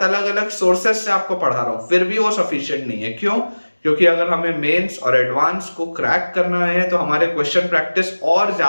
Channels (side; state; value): both; inverted; correlation -1.00